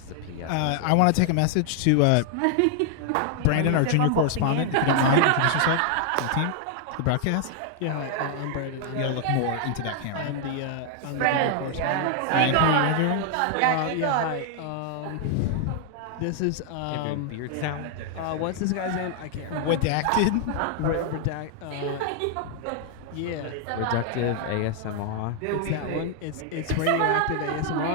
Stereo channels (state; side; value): different; both; correlation 0.00